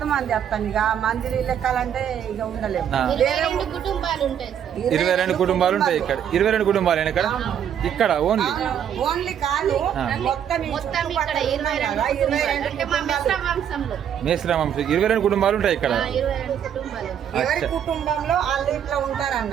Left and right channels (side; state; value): left; quieter; 9.1 dB